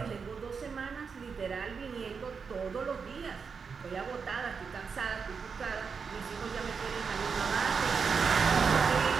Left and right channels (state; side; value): quieter; left; 5.7 dB